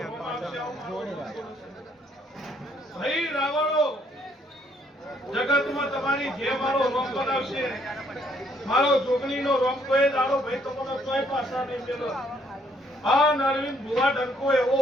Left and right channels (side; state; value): both; normal; correlation 0.68